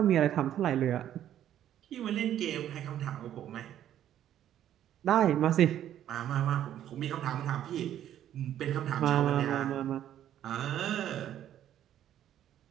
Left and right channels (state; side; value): quieter; left; 11.2 dB